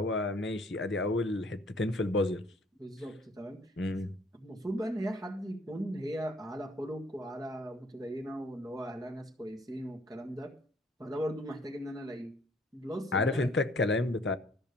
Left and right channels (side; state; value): both; normal; correlation 0.60